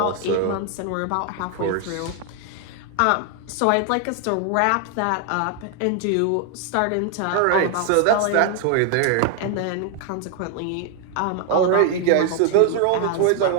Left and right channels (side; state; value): both; different; correlation 0.00